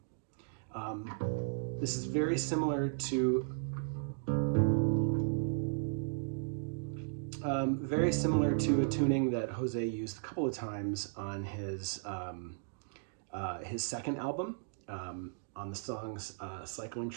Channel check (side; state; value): left; silent; digital silence